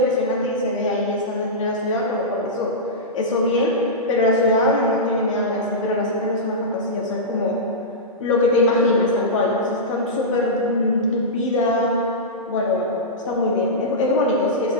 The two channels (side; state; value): both; normal; correlation -0.14